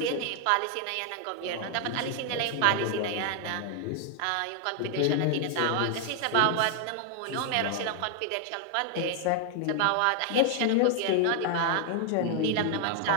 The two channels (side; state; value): both; different; correlation 0.00